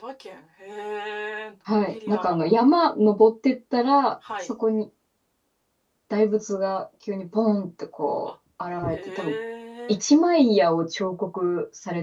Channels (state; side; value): identical; both; correlation 1.00